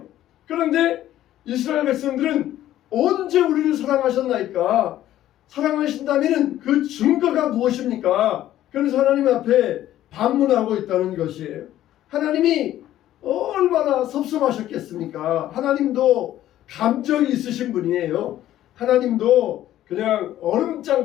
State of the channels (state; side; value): quieter; right; 13.1 dB